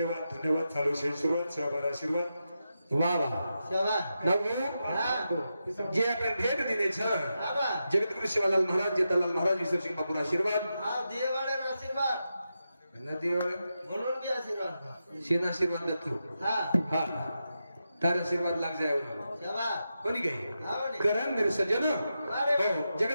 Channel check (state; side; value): inverted; both; correlation -0.88